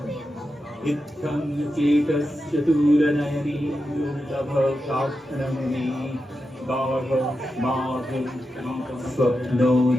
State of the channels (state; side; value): normal; both; correlation 0.89